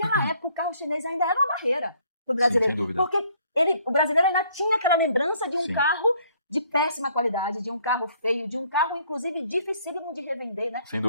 época, o carro chinês ainda era uma barreira para o brasileiro. Sim, sem dúvida. Porque o brasileiro ainda tinha aquela lembrança de um carro de péssima qualidade, de um carro feio, de um carro, inclusive, dificílimo de revender, né? Sem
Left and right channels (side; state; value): both; inverted; correlation -0.63